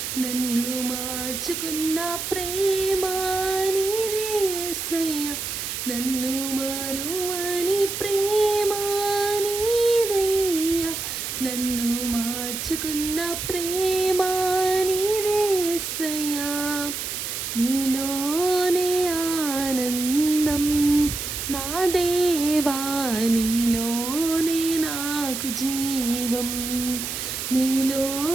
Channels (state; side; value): noise; right; hiss, 5 dB below the sound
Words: నన్ను మార్చుకున్న ప్రేమ నీదే యేసయ్యా. నన్ను మారువని ప్రేమ నీదయ్యా, నన్ను మార్చుకున్న ప్రేమ నీదే యేసయ్యా. నీలోనే ఆనందం నా దేవా, నీలోనే నాకు జీవం,